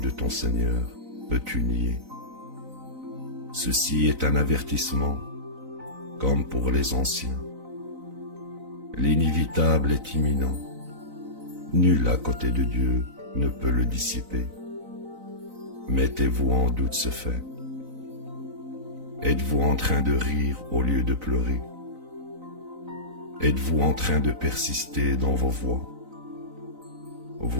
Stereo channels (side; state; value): left; late; 4.0 ms